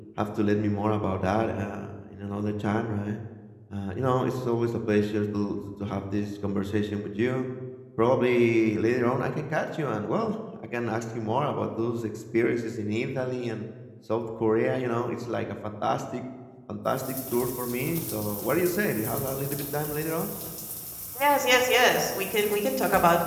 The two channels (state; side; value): identical; both; correlation 1.00